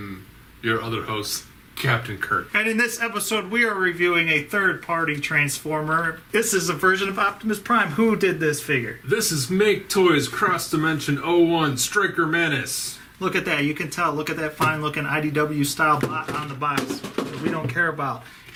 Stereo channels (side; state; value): both; identical; correlation 1.00